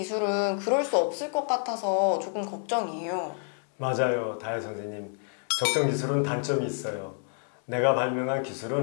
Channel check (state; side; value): silent; right; 59 dB below the other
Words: 그럴 수 없을 것 같아서 조금 걱정이에요. 맞아요, 다혜 선생님. 적정 기술은 단점이 있어요. 내가 발명한